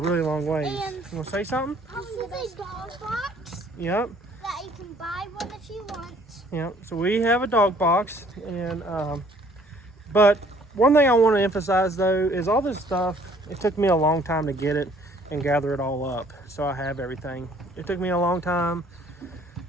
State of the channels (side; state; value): both; normal; correlation 0.59